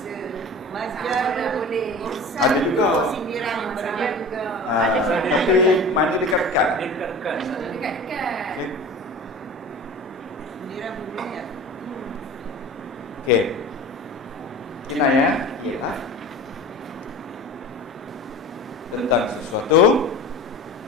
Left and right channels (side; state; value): both; normal; correlation 0.36